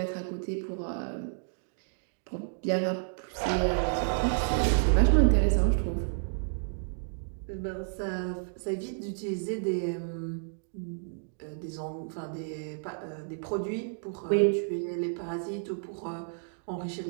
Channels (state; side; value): silent; left; digital silence